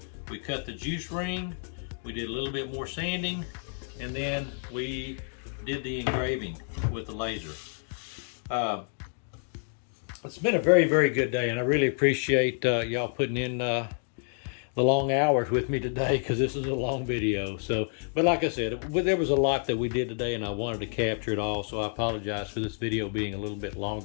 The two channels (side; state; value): right; silent; 59 dB below the other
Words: We cut the juice ring. We did a little bit more sanding, and then we did the engraving with the laser. It's been a very, very good day, and I really appreciate y'all putting in the long hours with me today, because this is a long video. So, but like I said, there was a lot that we did today, and I wanted to capture it all, so I apologize for this video being a little bit